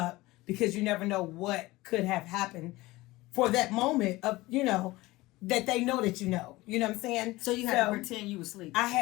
because you never know what could have happened for that moment of, that they know that you know. You know what I'm saying? So you had to pretend you were asleep. I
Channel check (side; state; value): right; quieter; 19.7 dB